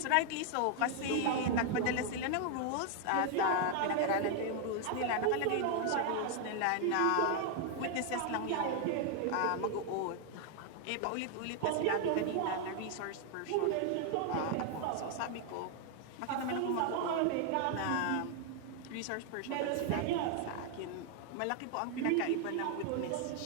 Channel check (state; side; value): different; both; correlation 0.00